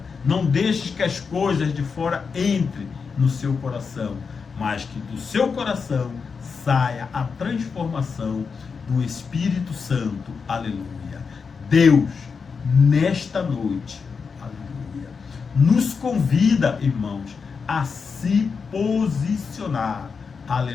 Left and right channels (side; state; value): right; quieter; 5.4 dB